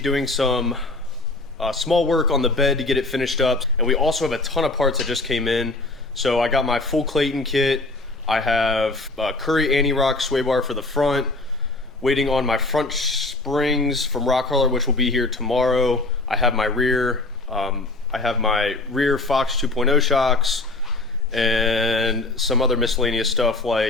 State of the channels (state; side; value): quieter; right; 3.1 dB